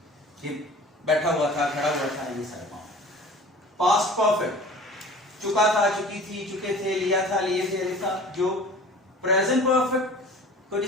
बैठा हुआ था, खड़ा हुआ था, ये सारे मामले। पास्ट परफेक्ट, चुका था, चुकी थी, चुके थे, लिया था, लिए थे, लिखा। जो प्रेजेंट परफेक्ट को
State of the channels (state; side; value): normal; both; correlation 0.43